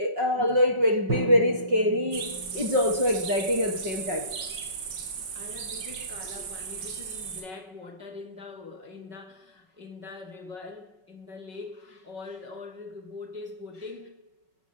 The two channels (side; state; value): left; late; 5.3 ms